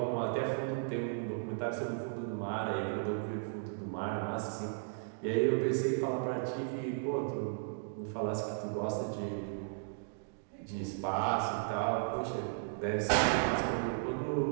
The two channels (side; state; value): left; silent; digital silence